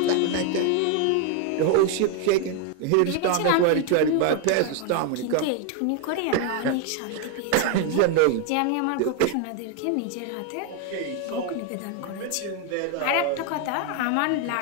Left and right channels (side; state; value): both; different; correlation 0.01